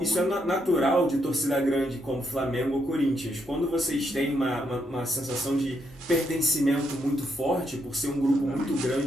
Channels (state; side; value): normal; both; correlation 0.77